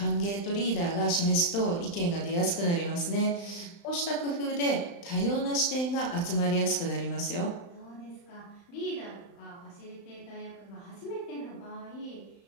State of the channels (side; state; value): right; late; 35 ms